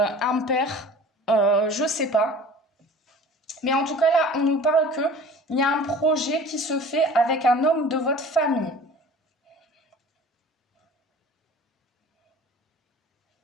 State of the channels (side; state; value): both; normal; correlation 0.44